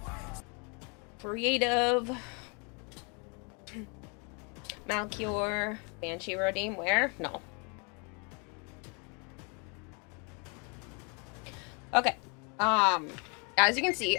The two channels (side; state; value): right; quieter; 34.6 dB